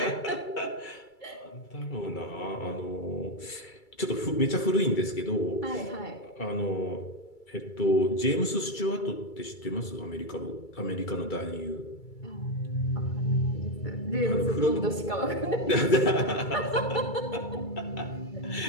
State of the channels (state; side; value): late; right; 2.3 ms